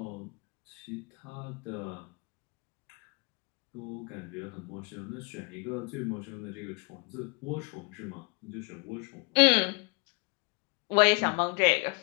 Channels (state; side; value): quieter; right; 31.1 dB